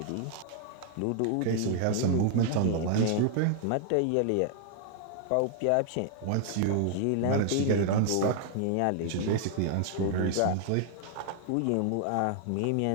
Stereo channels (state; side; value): different; both; correlation 0.00